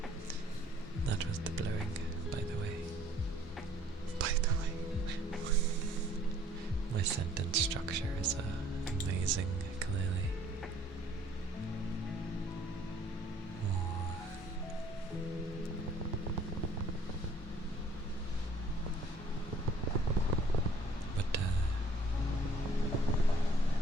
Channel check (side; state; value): both; normal; correlation 0.58